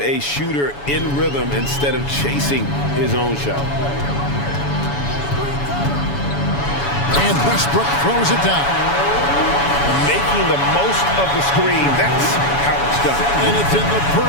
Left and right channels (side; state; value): right; late; 7.1 ms